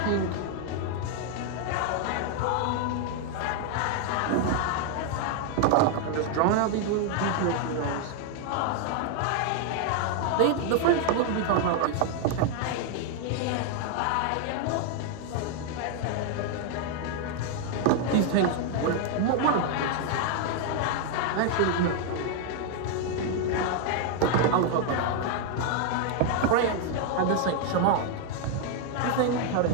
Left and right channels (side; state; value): both; different; correlation 0.00